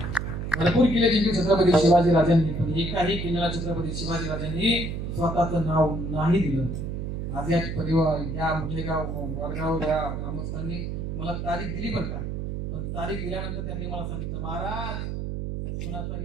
भरपूर किल्ले जिंकले छत्रपती शिवाजी राजांनी, पण एकाही किल्ल्याला छत्रपती शिवाजी राजांनी स्वतःचं नाव नाही दिलं. आज या परिवार या मुठेगाव वडगाव या ग्रामस्थांनी मला तारीख दिली बरं का, पण तारीख दिल्यानंतर त्यांनी मला सांगितलं महाराज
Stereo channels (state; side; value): noise; right; hum, 4 dB below the sound